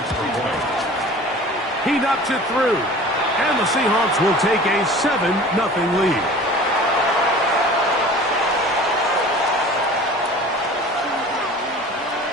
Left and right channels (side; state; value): both; normal; correlation 0.42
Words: He knocks it through, and the Seahawks will take a 7-0 lead.